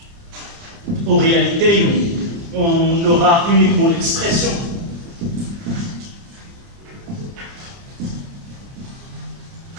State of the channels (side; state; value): left; late; 30 ms